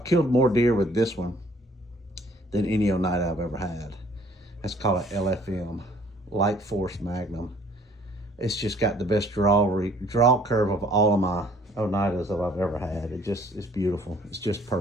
killed more deer with this one than any Oneida I've ever had. That's called an LFM, Light Force Magnum. It's just got the best draw curve of all of my Oneidas that I've ever had. It's beautiful. It's just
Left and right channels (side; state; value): both; normal; correlation 0.58